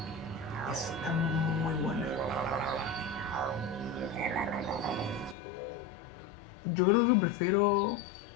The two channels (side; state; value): right; drops out; at 5.4 s